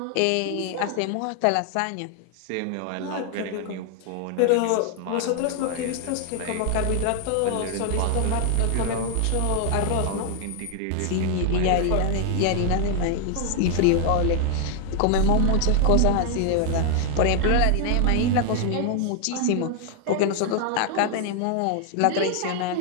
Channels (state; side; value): different; both; correlation 0.00